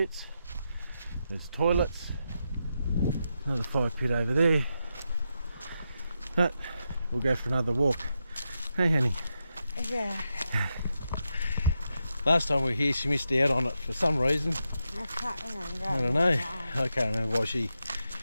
there's toilets, another fire pit over there, but we'll go for another walk. Hey honey. Yeah. Last time we were here she missed out on it for some reason. I can't remember. I don't know. I can't remember why she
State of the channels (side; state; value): both; inverted; correlation -0.86